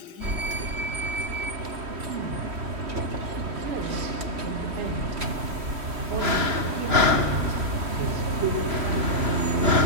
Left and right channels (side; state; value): left; late; 3.0 ms